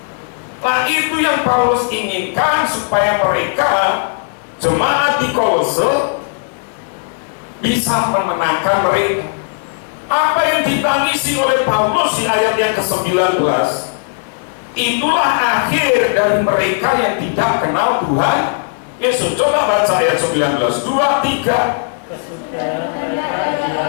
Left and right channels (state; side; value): silent; right; 64 dB below the other